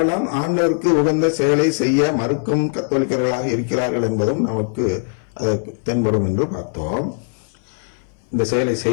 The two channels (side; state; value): right; silent; 60 dB below the other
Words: ஆண்டவருக்கு உகந்த செயலை செய்ய மறுக்கும் கத்தோலிக்கர்களாக இருக்கிறார்கள் என்பதும் நமக்கு தென்படும் என்று பார்த்தோம். இந்த செயலை